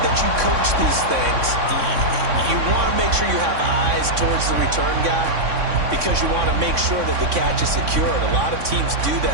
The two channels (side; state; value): left; late; 3.6 ms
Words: that you coach these things, you want to make sure you have eyes towards the return guy, because you want to make sure that the catch is secured. A lot of teams do